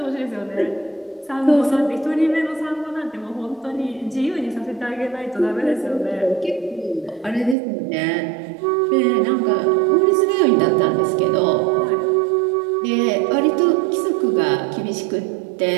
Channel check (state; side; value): drops out; left; at 7.6 s